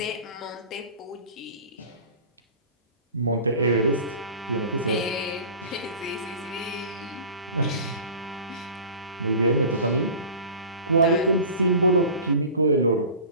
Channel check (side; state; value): both; inverted; correlation -0.39